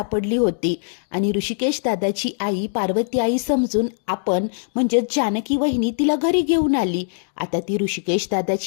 होती आणि ऋषिकेश दादाची आई पार्वती आई समजून आपण म्हणजे जानकी वहिनी तिला घरी घेऊन आली. आता ती ऋषिकेश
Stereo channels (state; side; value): silent; right; digital silence